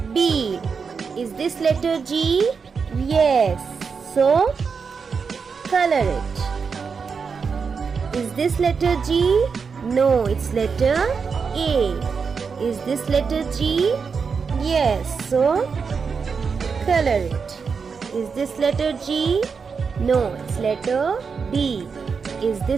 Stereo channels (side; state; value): left; quieter; 5.6 dB